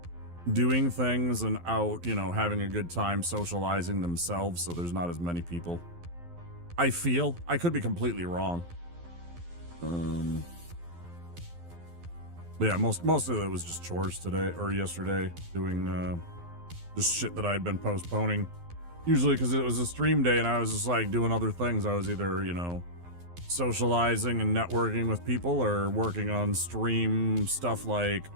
doing things and out, having a good time socializing themselves, so there's not as many people. I feel. I could be completely wrong. But yeah, most of it was just chores today or yesterday, doing just shit that I had been postponing. Usually because it was a stream day and I was just like doing other things. I was either, socializing and networking with people or working on stream stuff like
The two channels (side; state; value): left; late; 12 ms